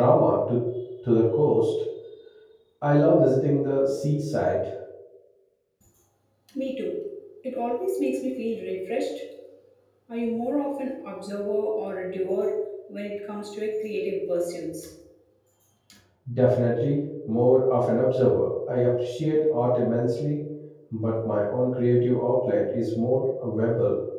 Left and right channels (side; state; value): both; identical; correlation 1.00